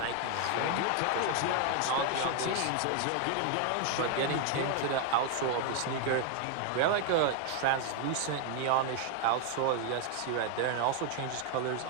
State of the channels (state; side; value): different; both; correlation 0.00